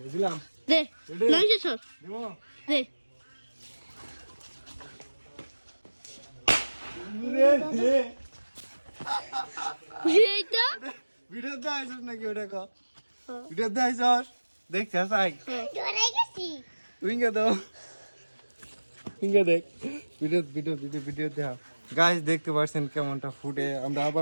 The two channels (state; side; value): inverted; both; correlation -1.00